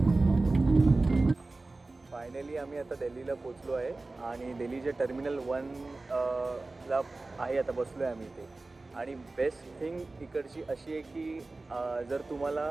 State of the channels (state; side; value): quieter; left; 3.3 dB